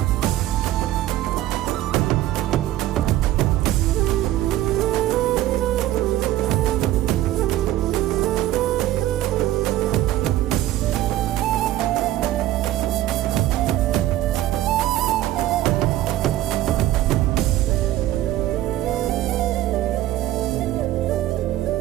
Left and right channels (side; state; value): left; quieter; 14.4 dB